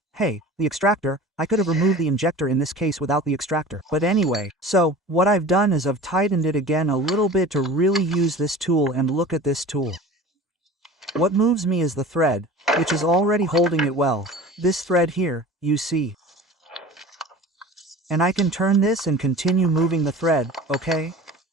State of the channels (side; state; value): both; normal; correlation 0.39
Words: the extractor, I could have removed the injector in this case without the extractor. But anyway, so, what I've done is I've tightened it again a little bit to really use this tool, and look at this tool. What moves me is the thread, which is already holding it well. This thread here, you see. And I can turn this and continue moving the thread, okay?